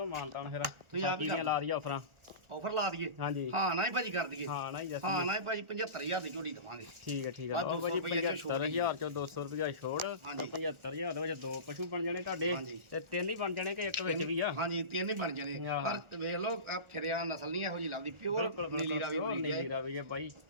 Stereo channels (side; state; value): left; late; 1.4 ms